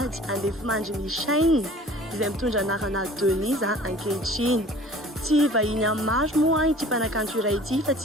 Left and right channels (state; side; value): normal; both; correlation 0.47